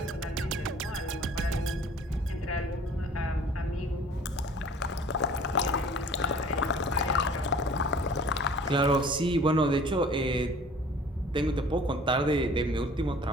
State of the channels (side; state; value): both; normal; correlation 0.50